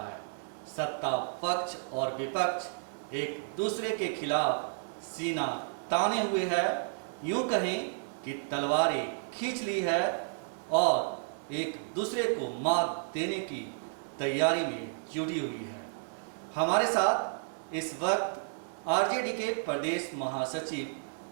सत्ता पक्ष और विपक्ष एक दूसरे के खिलाफ सीना ताने हुए है, यूं कहें कि तलवारें खींच ली है और एक दूसरे को मात देने की तैयारी में जुटी हुई है। हमारे साथ इस वक्त आरजेडी के प्रदेश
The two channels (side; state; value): left; silent; digital silence